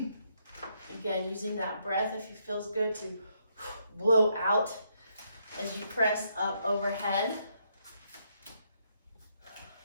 Again, using that breath if it feels good to blow out as you press up overhead.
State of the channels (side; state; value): both; inverted; correlation -0.75